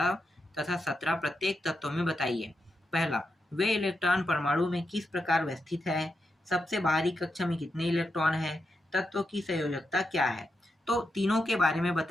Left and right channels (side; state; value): both; normal; correlation 0.86